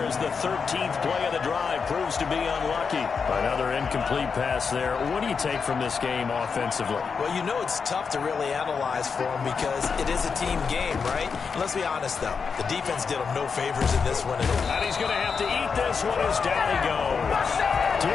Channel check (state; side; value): quieter; right; 5.6 dB